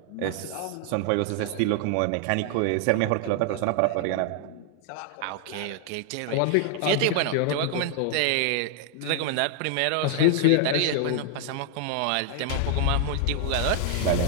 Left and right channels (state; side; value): different; both; correlation 0.00